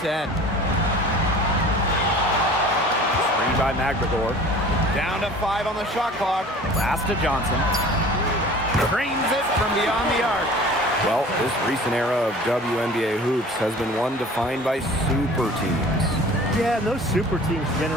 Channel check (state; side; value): normal; both; correlation 0.44